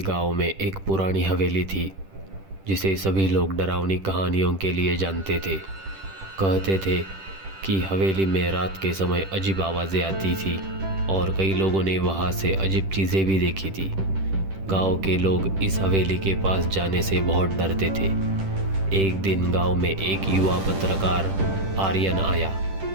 में एक पुरानी हवेली थी जिसे सभी लोग डरावनी कहानियों के लिए जानते थे। कहते थे कि हवेली में रात के समय अजीब आवाज़ें आती थी और कई लोगों ने वहाँ से अजीब चीज़ें भी देखी थी। गांव के लोग इस हवेली के पास जाने से बहुत डरते थे। एक दिन गांव में एक युवा पत्रकार आर्यन आया।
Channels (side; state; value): left; late; 10 ms